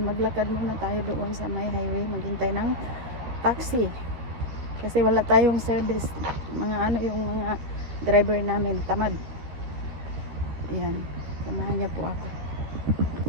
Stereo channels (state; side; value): late; left; 13 ms